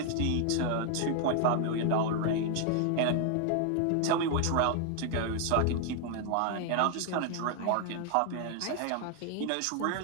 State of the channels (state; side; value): different; both; correlation 0.00